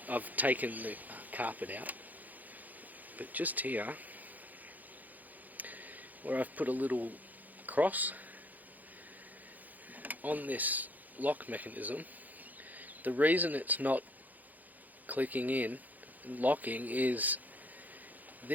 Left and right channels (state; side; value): late; left; 0.082 ms